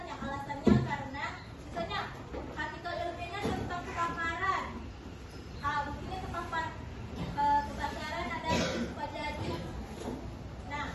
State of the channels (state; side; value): identical; both; correlation 1.00